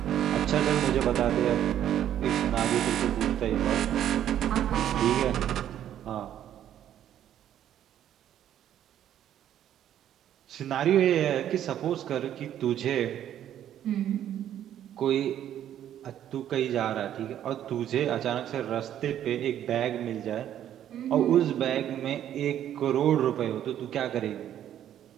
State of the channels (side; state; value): left; quieter; 10.9 dB